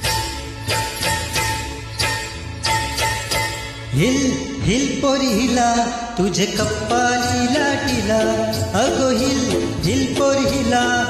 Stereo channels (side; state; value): both; identical; correlation 1.00